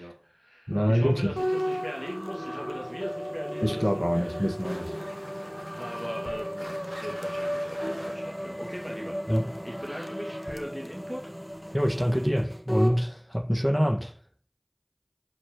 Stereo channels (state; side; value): identical; both; correlation 1.00